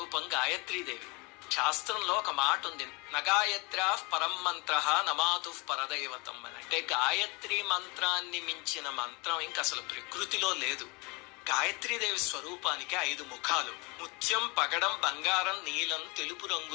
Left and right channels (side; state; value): right; quieter; 28.2 dB